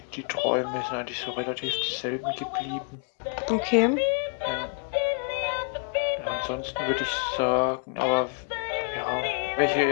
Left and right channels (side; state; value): right; quieter; 38.8 dB